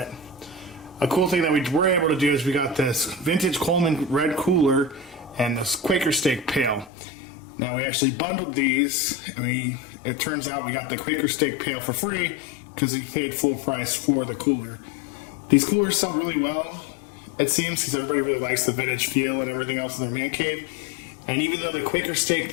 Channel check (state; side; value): drops out; right; at 6.9 s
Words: A cool thing that we were able to do is we got this vintage Coleman red cooler and this Quaker steak pail. Now we actually bundled these, and it turns out we got the Quaker steak pail for free because we paid full price for the cooler. These coolers sell really well, it seems, because everybody really likes the vintage feel and everything else in their man cave. And even though the Quaker steak